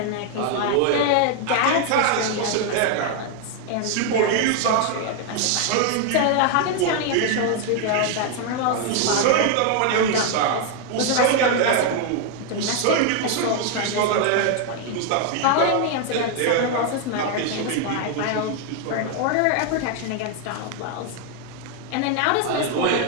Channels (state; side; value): different; both; correlation 0.00